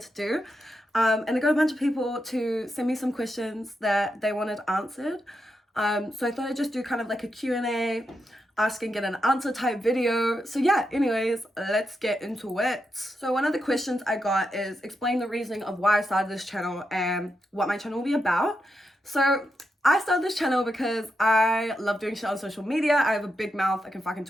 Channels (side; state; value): both; normal; correlation 0.85